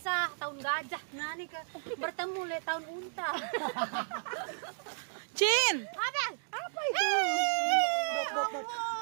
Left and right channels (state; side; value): silent; left; digital silence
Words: tahun gajah. Nah nih ke bertemu le tahun unta. Cin. Apa itu?